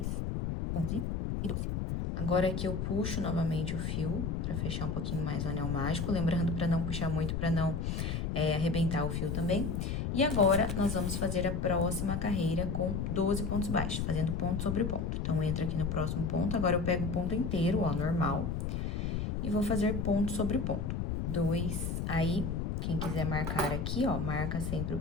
11 e 12. Agora, aqui eu puxo novamente o fio pra fechar um pouquinho mais o anel mágico, lembrando pra não puxar muito, pra não arrebentar o fio também. E agora, nós vamos fazer a próxima carreira com 12 pontos baixos, fazendo ponto sobre ponto. Então, entra aqui no próximo ponto, agora eu pego o ponto inteiro, ó, normal, e vou fazer ponto sobre ponto. 2. Aí, quem quiser marcar aqui, ó, marca sempre o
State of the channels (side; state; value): left; noise; rumble, 1 dB below the sound